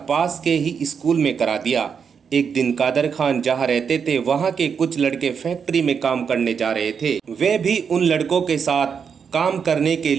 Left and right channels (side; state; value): left; quieter; 6.6 dB